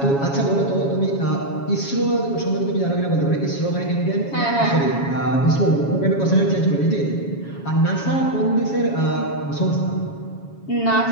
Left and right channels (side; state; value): right; late; 7.2 ms